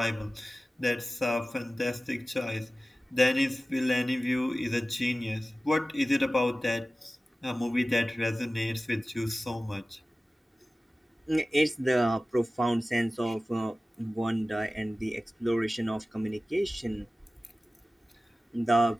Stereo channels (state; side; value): normal; both; correlation 0.96